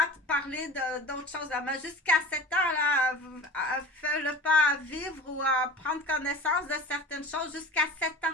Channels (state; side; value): normal; both; correlation 0.38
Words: parler d'autres choses. Mais jusqu'à 7 ans, là, fais-le pas vivre ou prendre connaissance de certaines choses jusqu'à 7